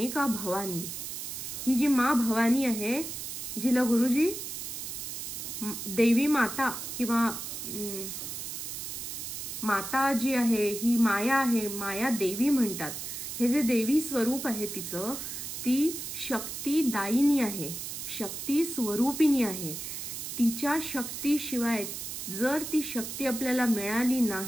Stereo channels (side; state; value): right; noise; hiss, 6 dB below the sound